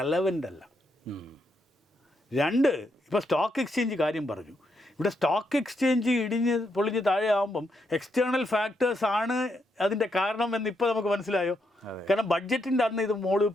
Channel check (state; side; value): normal; both; correlation 0.79